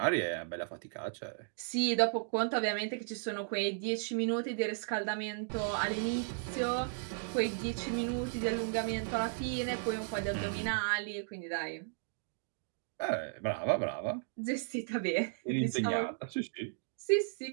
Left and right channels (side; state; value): left; silent; digital silence